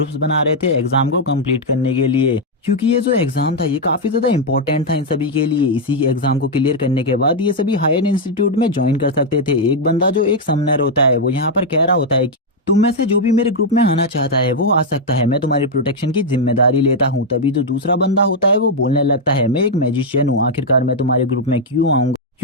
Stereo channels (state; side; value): normal; both; correlation -0.01